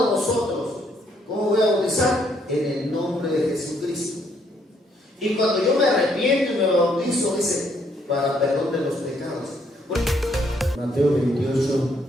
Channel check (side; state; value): both; normal; correlation 0.70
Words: de nosotros, ¿cómo voy a bautizar? En el nombre de Jesucristo. Y cuando yo me arrepiento y me bautizo, dice, para perdón de los pecados. Mateo 28,